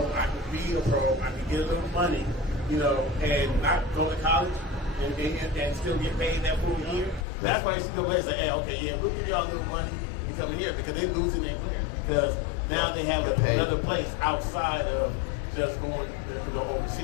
I can be a pro, I can get a little money, you know, and not go to college and still get paid that full year. That's why NCAA say, hey, okay, yeah, we'll give y'all a little money to come in here because they're losing their player because now they have another place outside of just going to the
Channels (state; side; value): drops out; right; at 7.2 s